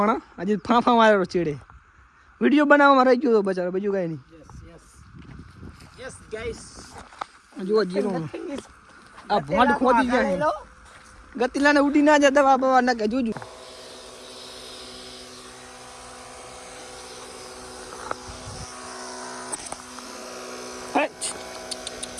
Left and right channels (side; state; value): both; identical; correlation 1.00